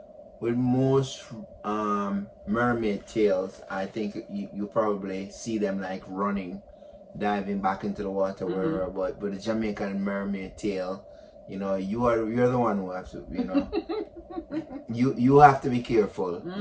most mermaid tales, I think you probably see them like running, diving back into the water, wherever. But the Jamaican mermaid tale, you know, you're the one who have to, you know, you have to be careful,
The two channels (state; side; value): identical; both; correlation 1.00